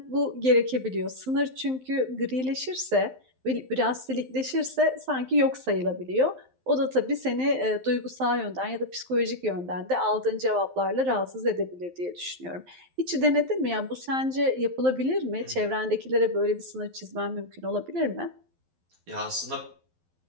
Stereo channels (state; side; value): late; left; 12 ms